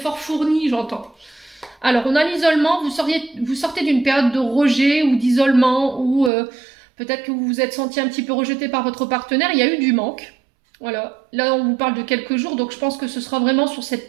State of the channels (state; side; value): drops out; left; at 6.3 s